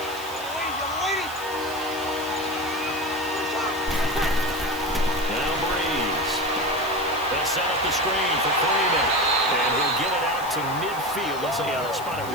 Now Breeze. They'll set up the screen for Freeman. And he'll get it out to midfield. Let's see, they'll spot it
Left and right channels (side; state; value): left; noise; hiss, 16 dB below the sound